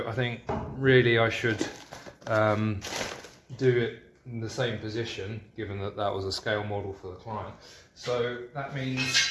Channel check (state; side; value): identical; both; correlation 1.00